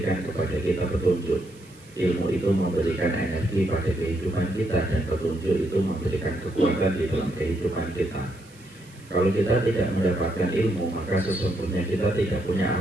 kepada kita petunjuk. Ilmu itu memberikan energi pada kehidupan kita, dan petunjuk itu memberikan kekuatan di dalam kehidupan kita. Kalau kita tidak mendapatkan ilmu, maka sesungguhnya kita tidak punya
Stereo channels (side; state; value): right; noise; hiss, 26 dB below the sound